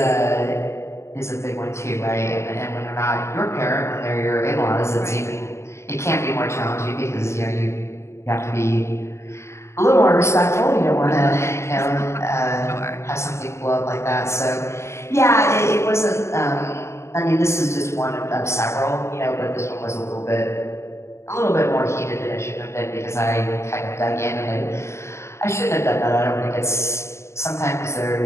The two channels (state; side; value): late; right; 0.13 ms